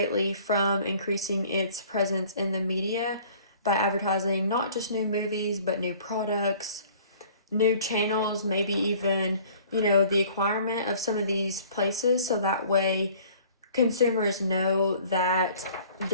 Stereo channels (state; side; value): inverted; both; correlation -0.51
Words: from increasing its presence in the media by advertising not just new movies, but new products, new channels, maybe even, the acquirement of some of these places, so that way consumers know that